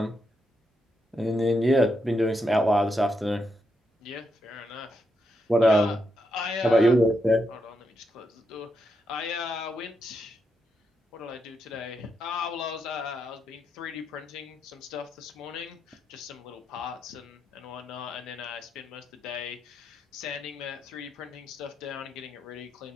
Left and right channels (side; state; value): both; normal; correlation 0.82